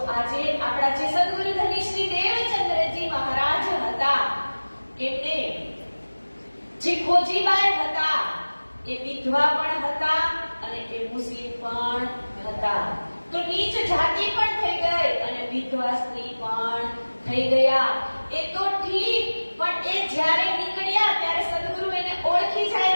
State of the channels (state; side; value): inverted; both; correlation -1.00